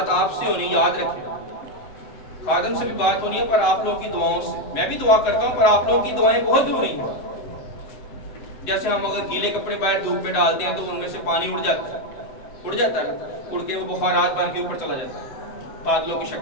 آپ سے ہونی، یاد رکھیں. خادم سے بھی بات ہونی ہے پر آپ لوگوں کی دعاؤں سے. میں بھی دعا کرتا ہوں پر آپ لوگوں کی دعائیں بہت ضروری ہیں. جیسے ہم اگر گیلے کپڑے باہر دھوپ پہ ڈالتے ہیں تو ان میں سے پانی اڑ جاتا ہے اڑ کے وہ بخارات بن کے اوپر چلا جاتا ہے بادلوں کی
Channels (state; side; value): late; right; 7.7 ms